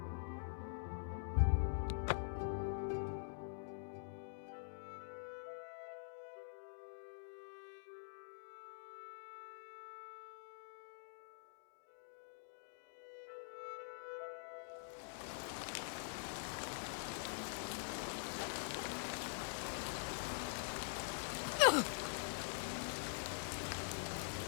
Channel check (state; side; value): silent; right; digital silence